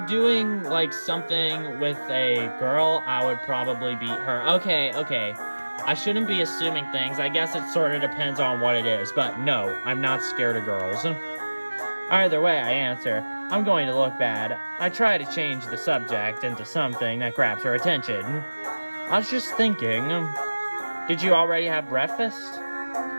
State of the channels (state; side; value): inverted; both; correlation -1.00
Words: doing, something with a girl, I would probably beat her. Okay. I shouldn't be assuming things. I guess it sort of depends on what it is. But no, I'm not scared of girls. Either way I answer, I'm going to look bad. I try to change the subject into something that grabs her attention. I was just thinking, did you already have breakfast?